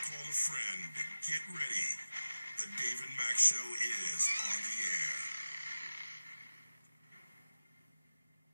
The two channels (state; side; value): inverted; both; correlation -0.93